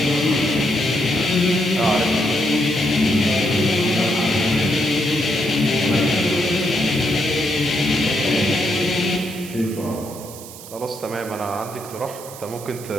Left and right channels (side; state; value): right; noise; hiss, 15 dB below the sound